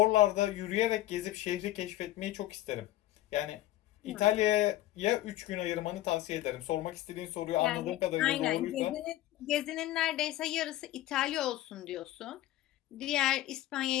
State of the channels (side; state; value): right; quieter; 15.0 dB